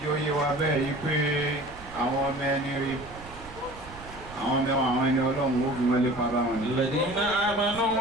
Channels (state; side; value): noise; right; rumble, 16 dB below the sound